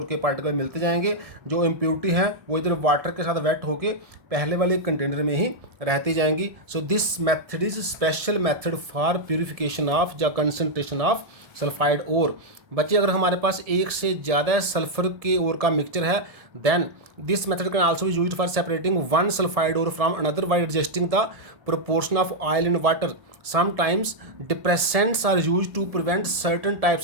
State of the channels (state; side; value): late; left; 1.7 ms